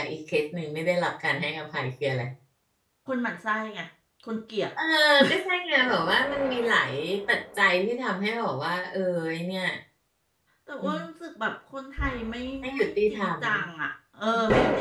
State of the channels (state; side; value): identical; both; correlation 1.00